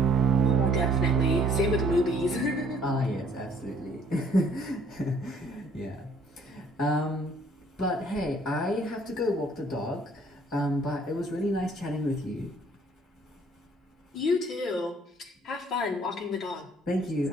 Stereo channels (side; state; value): both; normal; correlation 0.59